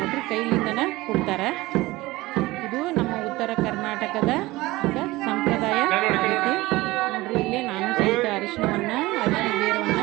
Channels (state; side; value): quieter; left; 19.7 dB